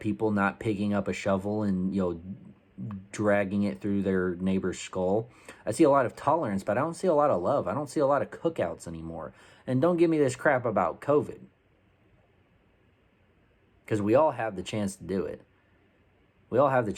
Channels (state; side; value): identical; both; correlation 1.00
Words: not picking up a shovel and, dragging it through their neighbor's skull. I see a lot of tolerance, but I don't see a lot of love. I don't see a lot of cookouts anymore. And don't give me this crap about COVID, because we all have the chance to do it. We all have the